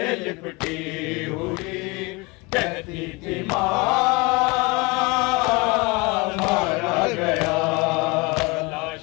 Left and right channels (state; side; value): quieter; right; 25.9 dB